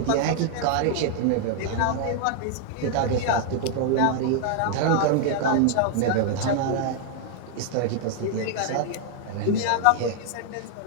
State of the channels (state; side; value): different; both; correlation 0.00